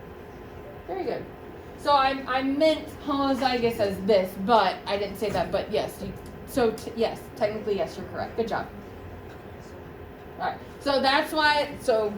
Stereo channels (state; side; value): identical; both; correlation 1.00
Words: Very good. So I meant homozygous as this, but I didn't say that. But yes, yes, technically yes, you're correct. Good job. All right. So that's why. So